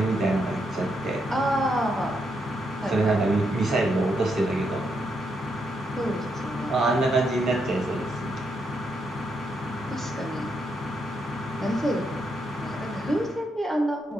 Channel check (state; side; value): normal; both; correlation 0.80